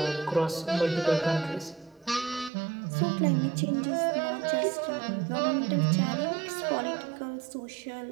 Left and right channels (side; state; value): left; drops out; at 2.5 s